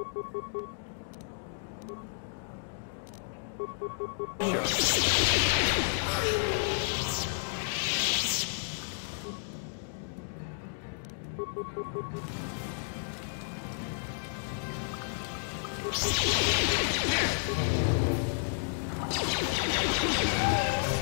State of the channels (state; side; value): silent; right; digital silence